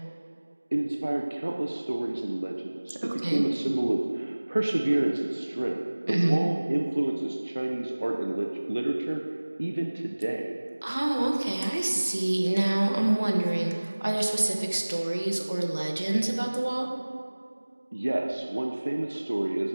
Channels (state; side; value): inverted; both; correlation -1.00